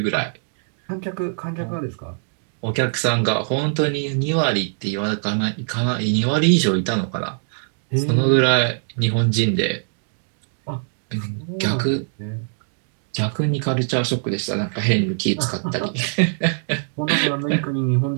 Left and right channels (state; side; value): silent; left; digital silence